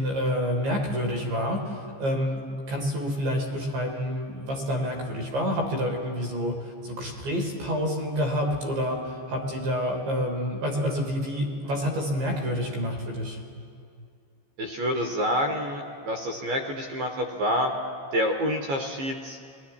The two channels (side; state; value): left; late; 15 ms